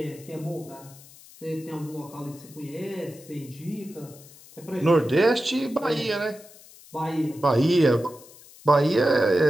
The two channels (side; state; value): left; noise; hiss, 22 dB below the sound